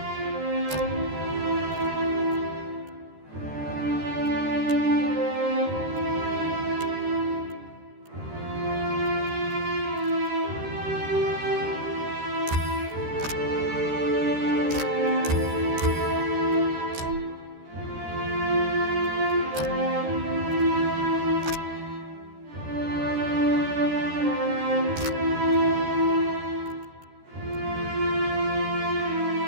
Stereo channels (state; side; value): late; left; 13 ms